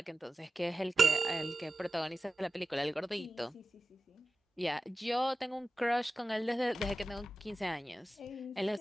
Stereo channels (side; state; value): both; normal; correlation 0.94